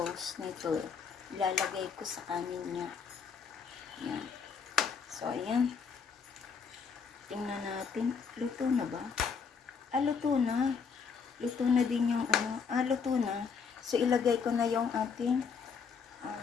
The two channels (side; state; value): right; quieter; 6.0 dB